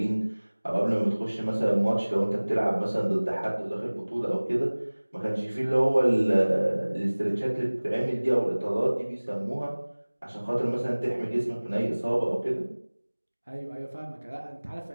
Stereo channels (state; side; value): inverted; both; correlation -1.00